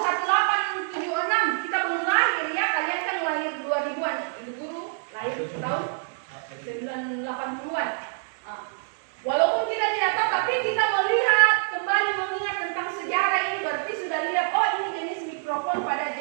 Kita belum lahir ya. Kalian kan lahir 2000-an. Ibu Guru lahir tahun 80-an. Walaupun kita tidak tahu, tapi kita melihat kembali mengingat tentang sejarah ini, berarti sudah lihat, oh ini jenis mikrofon pada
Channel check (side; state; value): left; silent; digital silence